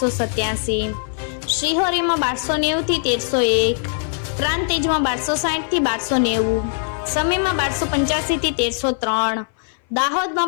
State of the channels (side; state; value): right; silent; 59 dB below the other